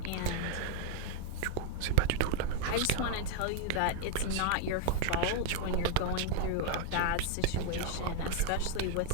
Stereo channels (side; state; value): both; different; correlation 0.00